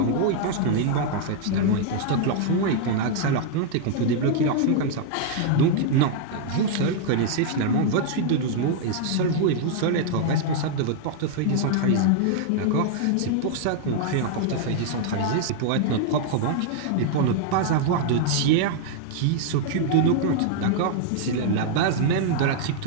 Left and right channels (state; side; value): different; both; correlation 0.00